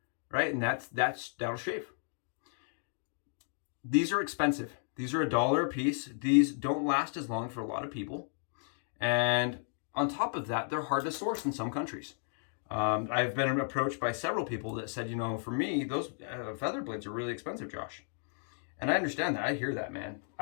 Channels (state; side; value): silent; right; 55 dB below the other